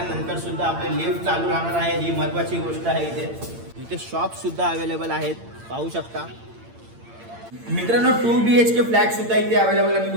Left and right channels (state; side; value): late; left; 8.8 ms